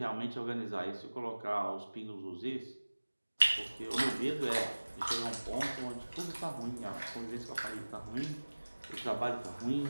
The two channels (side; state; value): both; inverted; correlation -1.00